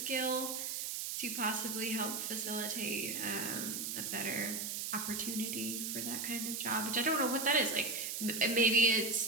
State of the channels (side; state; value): right; noise; hiss, 3 dB below the sound